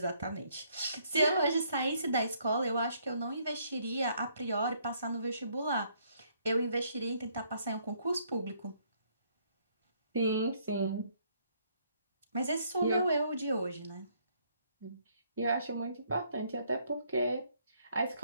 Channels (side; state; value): both; inverted; correlation -0.68